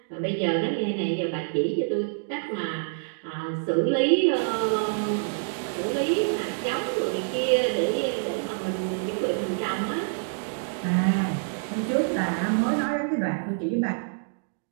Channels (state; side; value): silent; left; digital silence